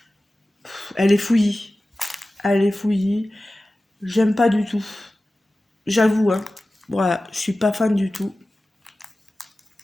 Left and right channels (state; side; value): normal; both; correlation 0.96